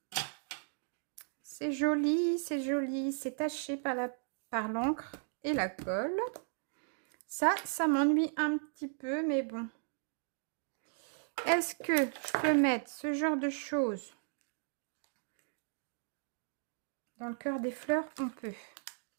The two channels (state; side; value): silent; left; digital silence